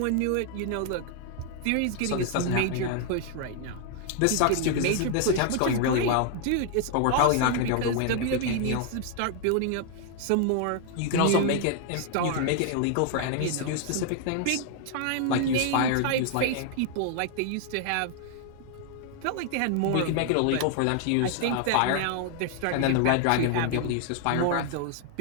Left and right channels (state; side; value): different; both; correlation 0.00